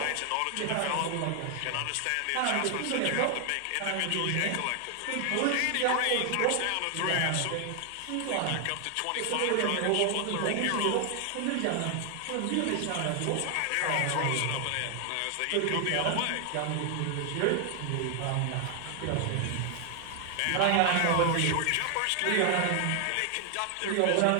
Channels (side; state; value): both; different; correlation 0.00